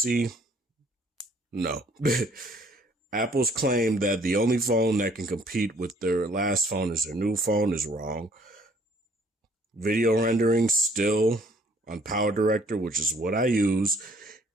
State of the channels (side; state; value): both; normal; correlation 0.60